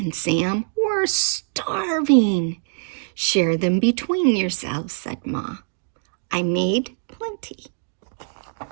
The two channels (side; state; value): left; silent; digital silence